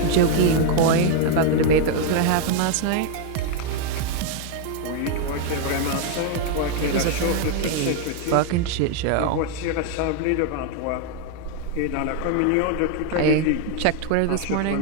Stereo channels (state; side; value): different; both; correlation 0.00